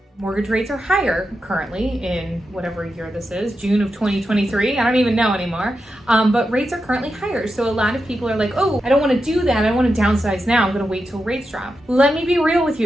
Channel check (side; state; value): both; normal; correlation 0.88